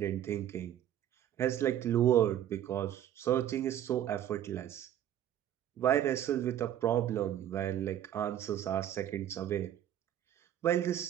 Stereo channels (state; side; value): quieter; left; 11.2 dB